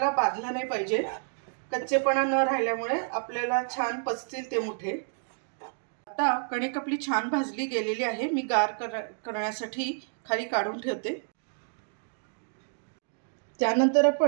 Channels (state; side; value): silent; left; digital silence